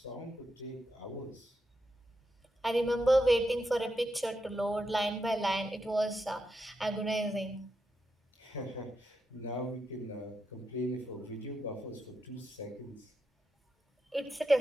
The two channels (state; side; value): normal; both; correlation 0.85